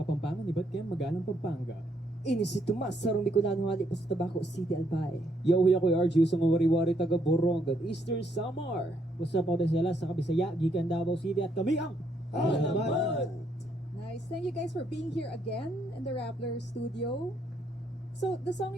iba't kaya magalang Pampanga. Ini si Tomas, sarong Bicolano hali pa sa Tabaco City, Albay. Yo, yakoy RG, sa wari-wari taga Borongan, Eastern Samar. What's up, ako sila sa Kabisaya, Gikan Davao City, at kami ang Alamat! Nice. Thank you guys for being here again in the Rappler studio. So, the song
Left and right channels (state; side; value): normal; both; correlation 0.73